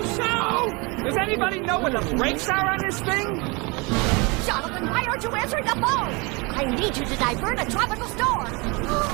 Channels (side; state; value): left; quieter; 28.0 dB